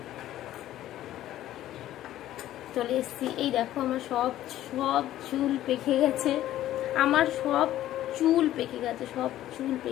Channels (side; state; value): right; quieter; 13.4 dB